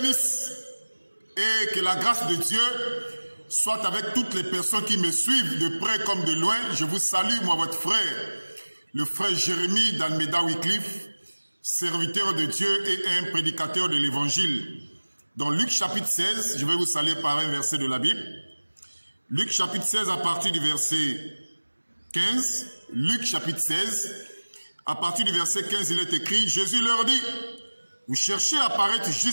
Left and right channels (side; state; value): both; inverted; correlation -1.00